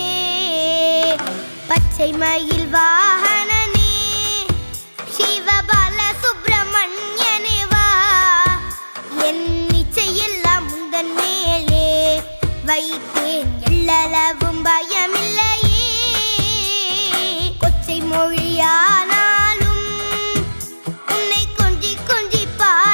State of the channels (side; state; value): both; inverted; correlation -1.00